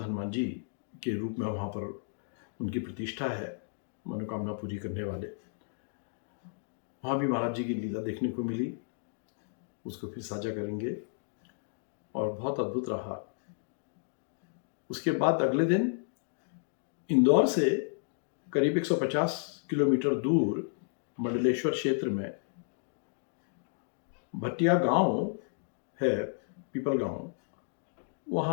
जी के रूप में वहां पर उनकी प्रतिष्ठा है, मनोकामना पूरी करने वाले। वहाँ भी महाराज जी की लीला देखने को मिली, उसको फिर साझा करेंगे। और बहुत अद्भुत रहा। उसके बाद अगले दिन इंदौर से करीब 150 किलोमीटर दूर मंडलेश्वर क्षेत्र में भटिया गांव है, पीपल गांव,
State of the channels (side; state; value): right; silent; digital silence